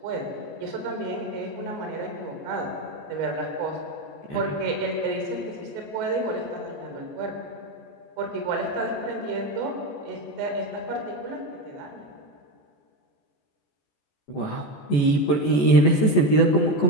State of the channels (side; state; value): right; late; 14 ms